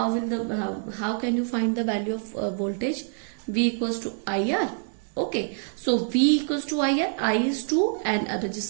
can you find the value of voltage? V equals to IR. Okay, so V equals to IR, I is 2 and a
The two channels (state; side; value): silent; left; 61 dB below the other